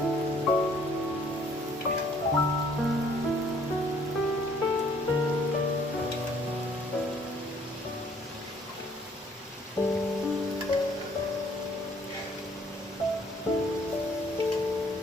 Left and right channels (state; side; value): normal; both; correlation 0.61